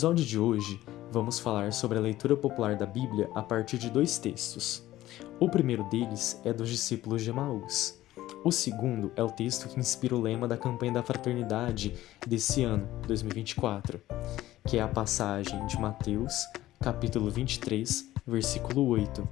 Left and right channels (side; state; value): right; quieter; 15.2 dB